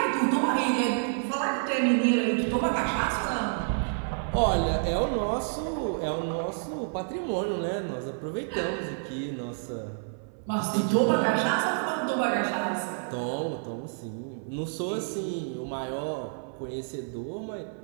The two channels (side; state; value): left; silent; 59 dB below the other